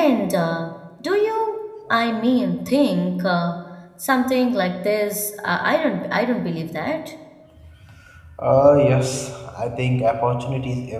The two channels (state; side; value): identical; both; correlation 1.00